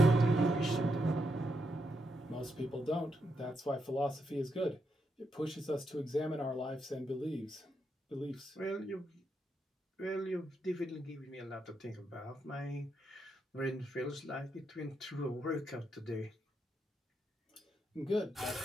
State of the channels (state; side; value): normal; both; correlation 0.81